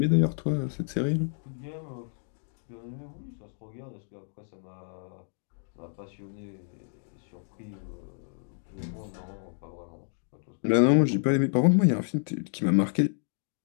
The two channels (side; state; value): right; silent; digital silence